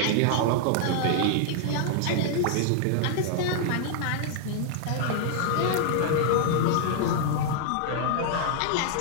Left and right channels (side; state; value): both; different; correlation -0.01